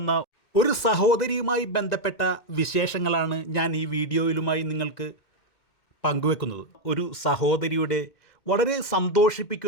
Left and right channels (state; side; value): late; right; 2.1 ms